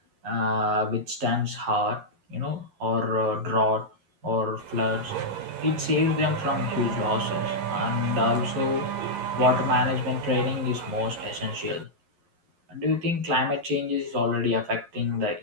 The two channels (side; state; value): left; late; 11 ms